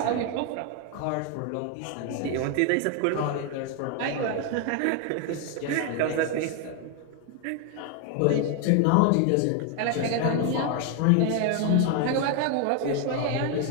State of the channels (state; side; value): different; both; correlation 0.01